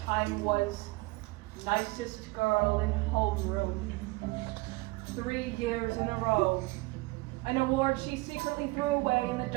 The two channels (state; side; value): quieter; left; 22.9 dB